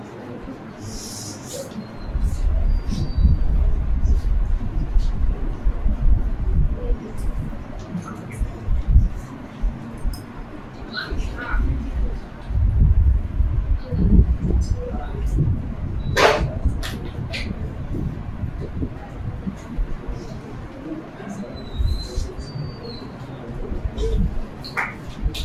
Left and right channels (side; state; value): both; identical; correlation 1.00